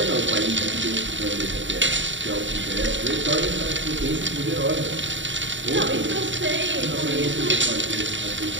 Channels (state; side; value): late; left; 0.54 ms